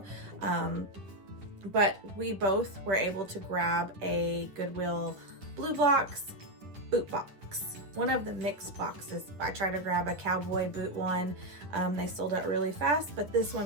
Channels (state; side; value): late; left; 10 ms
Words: But we both were able to grab a Goodwill Bluebox boot box. One of the mixed boxes. I tried to grab a cowboy boot one. They sold out really fast, but this